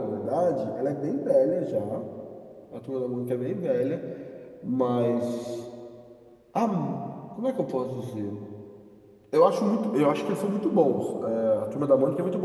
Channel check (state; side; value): identical; both; correlation 1.00